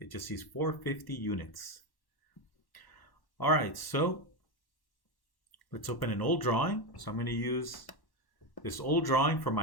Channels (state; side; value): late; right; 1.1 ms